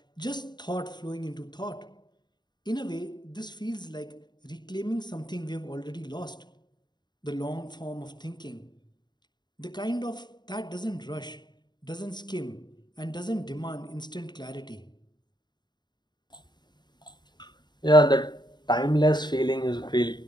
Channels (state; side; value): late; right; 0.21 ms